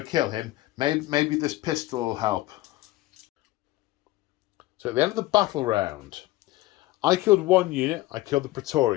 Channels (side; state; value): right; quieter; 17.9 dB